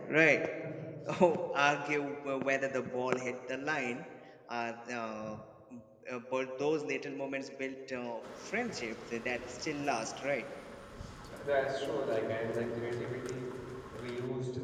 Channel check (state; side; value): identical; both; correlation 1.00